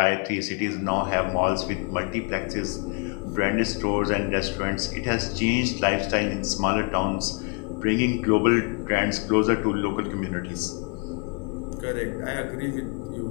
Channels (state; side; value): quieter; right; 33.8 dB